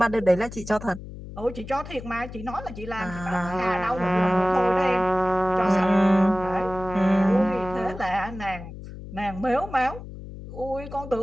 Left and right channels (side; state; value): left; noise; hum, 12 dB below the sound